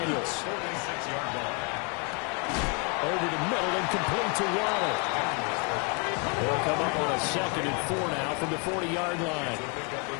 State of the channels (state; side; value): quieter; right; 35.3 dB